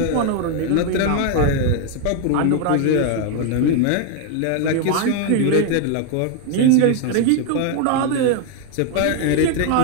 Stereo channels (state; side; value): different; both; correlation 0.01